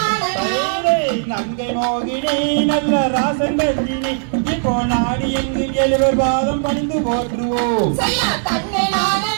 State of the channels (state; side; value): silent; left; digital silence